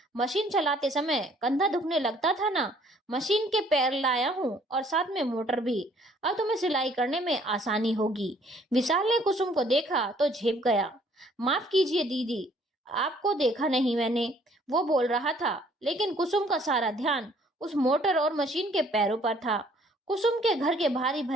मशीन चलाते समय कंधा दुखने लगता था ना, मशीन के पैर लाया हूँ और साथ में मोटर भी। अब तुम्हें सिलाई करने में आसानी होगी। विशाल ने कुसुम को देखा तो झेप गया। माफ कीजिए दीदी, आपको देखा नहीं मैंने, वो बोल रहा था, लेकिन कुसुम का सारा ध्यान उस मोटर और मशीन के पैरों पर था। कुसुम के घर के भारी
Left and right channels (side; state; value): both; normal; correlation 0.60